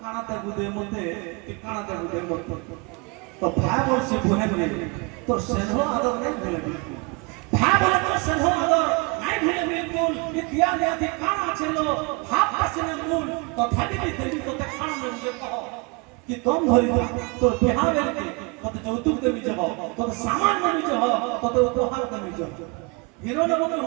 कानाते गुदे मते कि कानाते गुदे मते तो भाई बोल से बुहे बोले तो सेनो आदर नहीं बोले भाई बोले तो सेनो নিয়াতি কানা ছিল ভাব আসিনা মূল তথাপি দেবী তোতে খানা নেউছে কহ কি দম ধরি তোর বিহা বেলকে তোতে যৌতুক দেবী যাব তোতে সামান নেবি যাব তোতে উপহার দেবি যাব হিরো নবকে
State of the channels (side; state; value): left; quieter; 29.7 dB